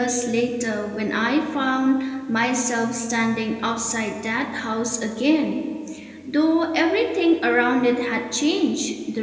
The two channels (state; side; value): identical; both; correlation 1.00